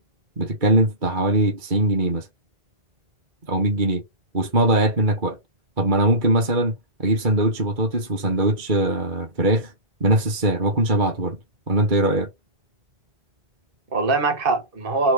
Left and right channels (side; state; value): left; late; 2.2 ms